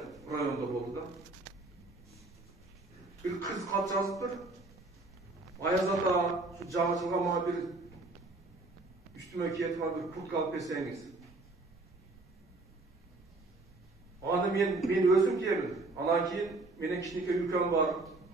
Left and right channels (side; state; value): left; quieter; 3.2 dB